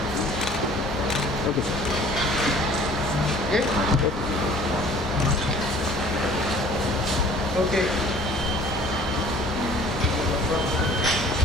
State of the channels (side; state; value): both; normal; correlation 0.51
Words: okay sir Okay.